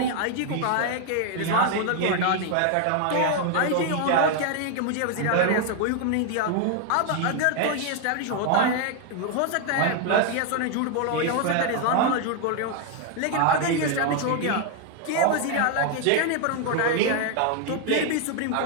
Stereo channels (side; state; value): both; different; correlation 0.00